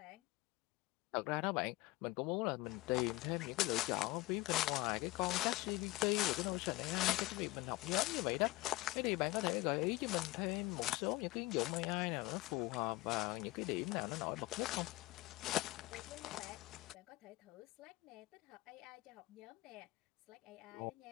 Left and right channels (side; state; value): right; quieter; 20.1 dB